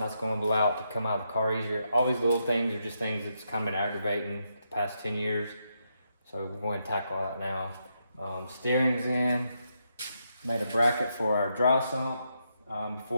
gonna allow it to come out of the car easier. All these little things are just things that's kind of been aggravating the past 10 years. So we're going to tackle that now. Steering's in, made a bracket for our dry sump.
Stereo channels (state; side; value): inverted; both; correlation -0.81